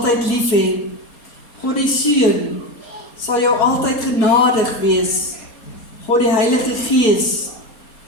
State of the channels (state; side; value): late; right; 4.3 ms